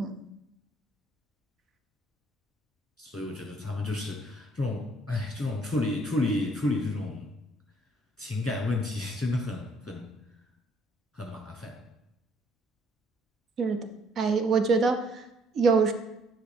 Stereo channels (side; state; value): both; normal; correlation 0.64